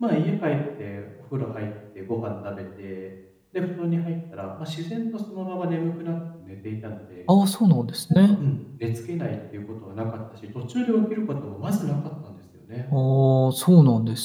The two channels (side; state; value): both; identical; correlation 1.00